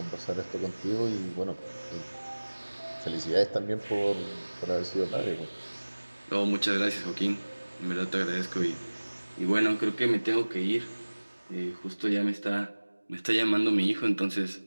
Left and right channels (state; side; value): inverted; both; correlation -1.00